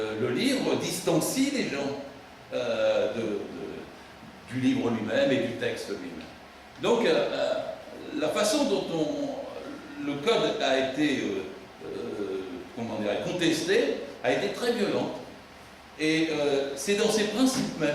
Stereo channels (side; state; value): both; identical; correlation 1.00